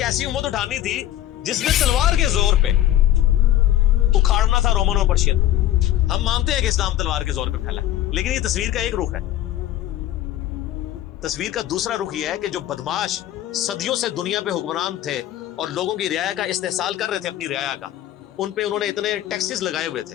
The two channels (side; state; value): right; quieter; 12.8 dB